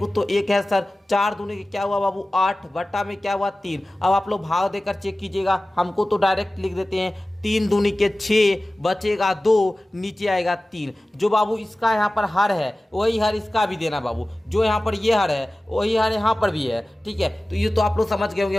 तो 1 है सर। 4 दूनी के क्या हुआ बाबू 8, बट्टा में क्या हुआ 3। अब आप लोग भाग देकर चेक कीजिएगा, हमको तो डायरेक्ट लिख देते हैं, 3 दूनी के 6, बचेगा 2, नीचे आएगा 3। जो बाबू इसका यहाँ पर हर है वही हर इसका भी देना बाबू, जो यहाँ पर ये हर है वही हर यहाँ पर भी है। ठीक है, तो ये तो आप लोग समझ गए होंगे,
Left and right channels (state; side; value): normal; both; correlation 0.97